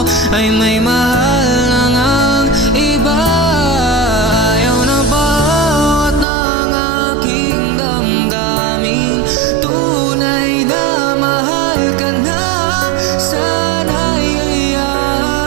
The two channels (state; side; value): drops out; left; at 6.2 s